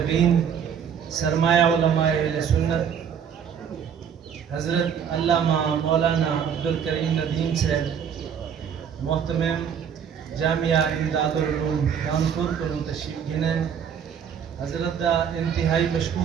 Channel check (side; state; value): left; quieter; 7.8 dB